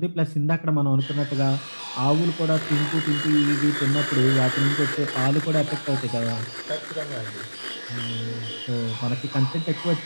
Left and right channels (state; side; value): inverted; both; correlation -1.00